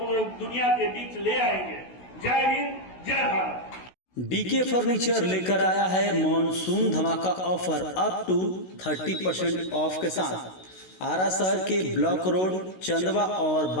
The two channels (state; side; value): late; right; 16 ms